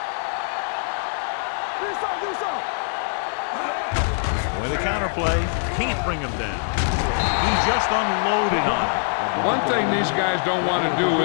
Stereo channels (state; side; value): silent; right; 58 dB below the other